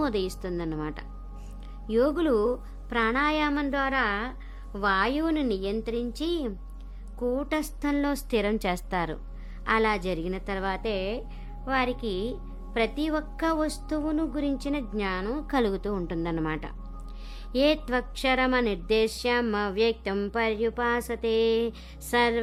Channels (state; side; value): identical; both; correlation 1.00